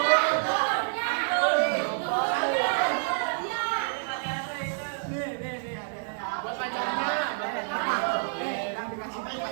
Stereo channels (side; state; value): left; silent; digital silence